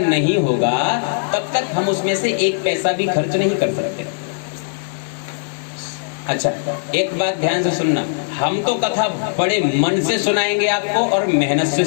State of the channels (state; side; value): silent; right; digital silence